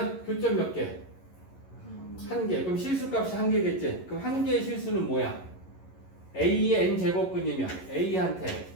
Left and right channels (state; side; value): late; right; 11 ms